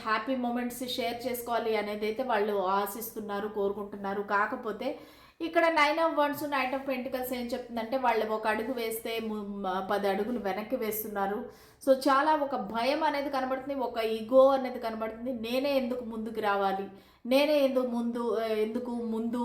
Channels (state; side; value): identical; both; correlation 1.00